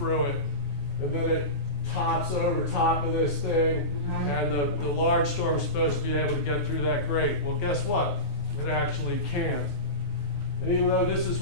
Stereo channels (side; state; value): right; late; 9.5 ms